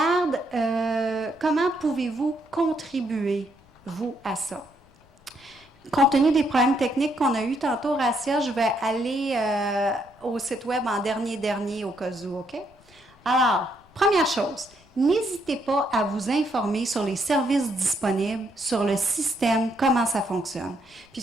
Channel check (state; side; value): noise; left; rumble, 29 dB below the sound